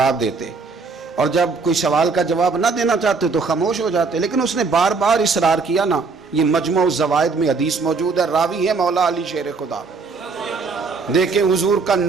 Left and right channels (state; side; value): quieter; left; 4.5 dB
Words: دیتے، اور جب کوئی سوال کا جواب نہ دینا چاہتے تو خاموش ہو جاتے، لیکن اس نے بار بار اصرار کیا نا۔ یہ مجموع الزوائد میں حدیث موجود ہے، راوی ہے مولا علی شیر خدا۔ دیکھیں حضور کا